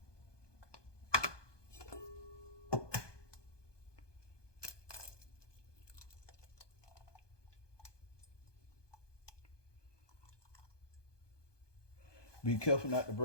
Be careful not to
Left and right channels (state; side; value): late; right; 1.2 ms